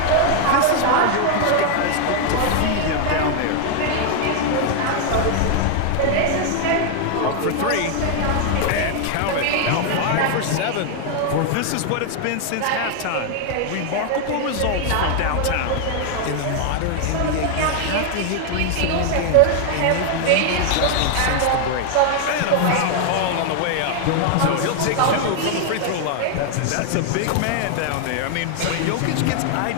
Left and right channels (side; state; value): both; different; correlation 0.00